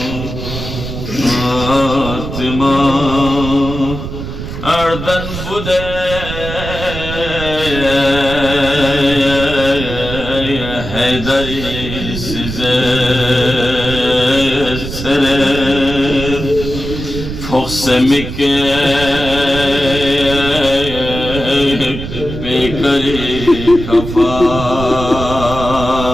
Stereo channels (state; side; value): noise; right; rumble, 7 dB below the sound